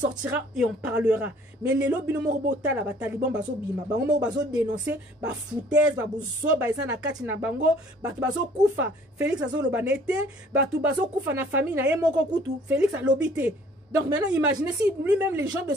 et on parlera. Mais les lobbies la taliban bazo bima, bazo dénoncer, ba foutaise, ba bouzo, ba na kati na bango, ba bazo kufa. Félix azo lobanete, ba tu bazo kufa na famille na yemoko kutu. Félix a lobité. Donc maintenant, imaginez si lui-même les gens de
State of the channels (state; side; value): normal; both; correlation 0.56